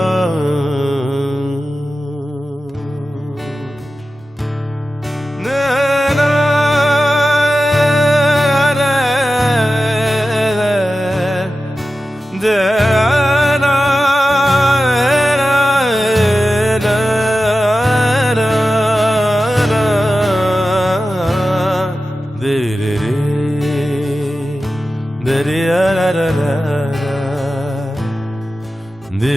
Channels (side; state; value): both; normal; correlation 0.93